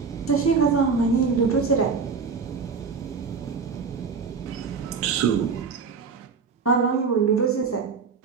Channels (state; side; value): quieter; left; 5.3 dB